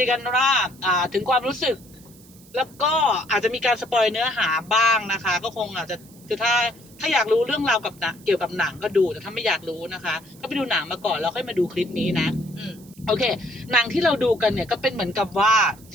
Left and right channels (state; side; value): noise; right; hiss, 24 dB below the sound